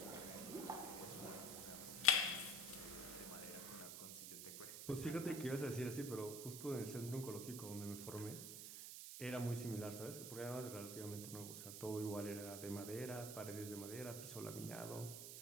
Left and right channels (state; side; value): noise; right; hiss, 7 dB below the sound